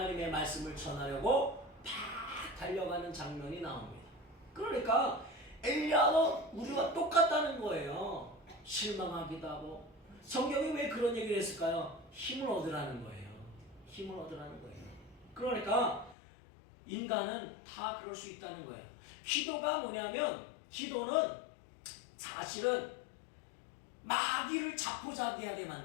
말씀을 전하려고 팍 달려가는 장면이 나옵니다. 그러니까 엘리야도 우리와 똑같다는 거예요. 실망하기도 하고. 성경이 왜 그런 얘기를 했을까요? 힘을 얻으라는 거예요. 힘을 얻으라는 거예요. 그러니까 인간은 다 그럴 수 있다는 거예요. 기도가 뭐냐면, 기도는 사실은 마귀를 자포자기하게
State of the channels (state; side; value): drops out; right; at 16.2 s